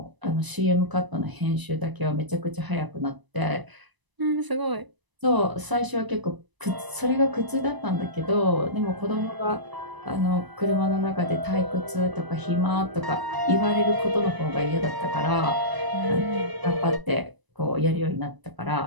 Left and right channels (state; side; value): late; left; 1.0 ms